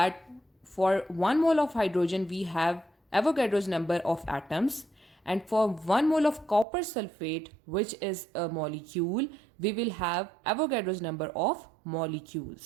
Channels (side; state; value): left; drops out; at 6.7 s